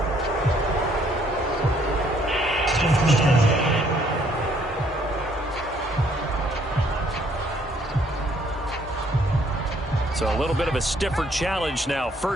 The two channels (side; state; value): both; normal; correlation 0.65